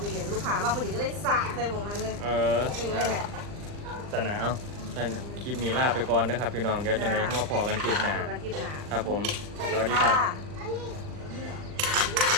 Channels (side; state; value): left; late; 39 ms